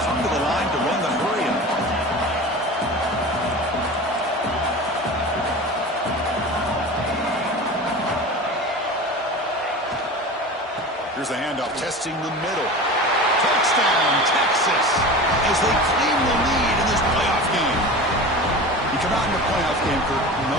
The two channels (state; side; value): normal; both; correlation 0.33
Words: come to the line to run the hurry-up. Here's the handoff, testing the middle. Touchdown, Texas, as they claim the lead in this playoff game. You come out in the playoff game, Kirk,